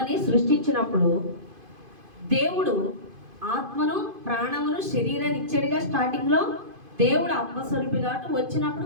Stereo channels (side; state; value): left; late; 2.5 ms